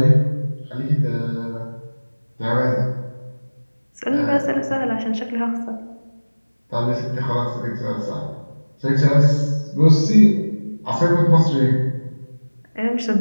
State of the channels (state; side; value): inverted; both; correlation -1.00